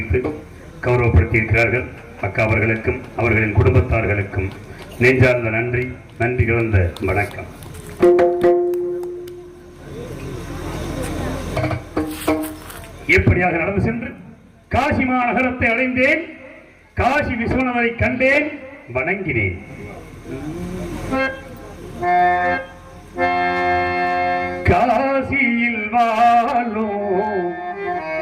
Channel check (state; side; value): identical; both; correlation 1.00